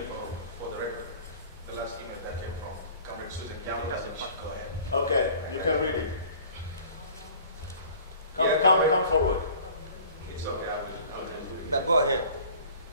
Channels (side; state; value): both; inverted; correlation -0.48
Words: for the record. The last email that came from Comrade Susan Young. Go ahead. Okay, you can read it. Come forward. It's okay. But go ahead.